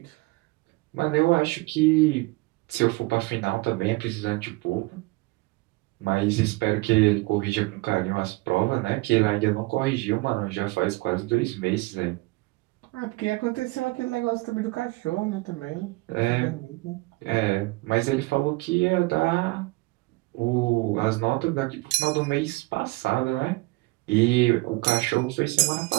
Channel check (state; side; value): quieter; left; 23.6 dB